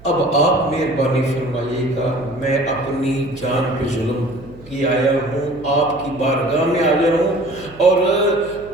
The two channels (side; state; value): right; noise; hum, 21 dB below the sound